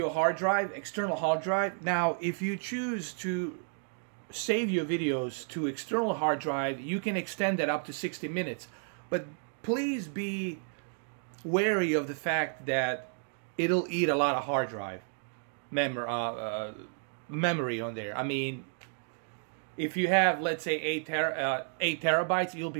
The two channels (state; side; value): silent; left; 57 dB below the other